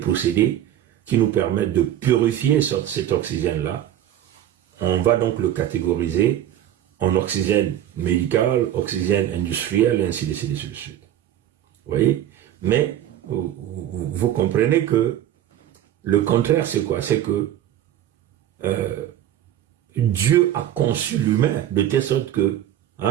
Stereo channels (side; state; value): left; quieter; 11.6 dB